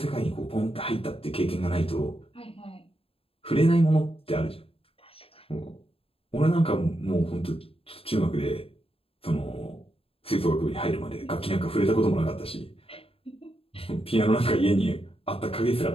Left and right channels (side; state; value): right; late; 0.27 ms